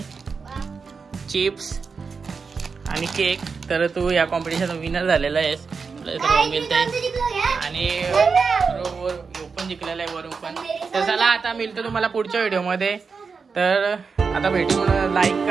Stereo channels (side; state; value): left; quieter; 5.1 dB